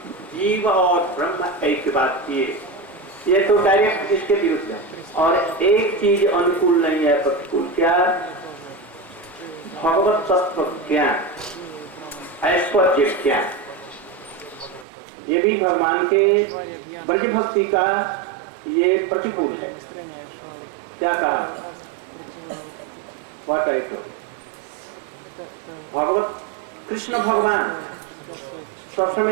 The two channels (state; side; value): drops out; left; at 14.9 s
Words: जीव और ब्रह्म ऐक्य बात ये तो डायरेक्ट इसके विरुद्ध है। और एक चीज अनुकूल नहीं है, प्रतिकूल, क्या? भगवत तत्व ज्ञान, ऐश्वर्य ज्ञान, ये भी भगवान के ब्रज भक्ति का ये प्रतिकूल है। क्या कहा? व्हाट आई टोल्ड, भगवत कृष्ण भगवान सब